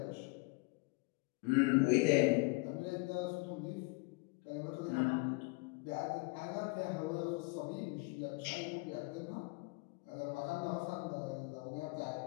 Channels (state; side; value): quieter; right; 27.6 dB